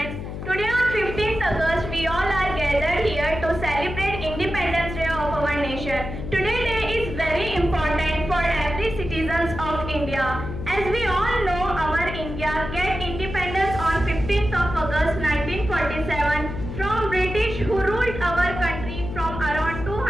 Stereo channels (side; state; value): left; noise; hum, 7 dB below the sound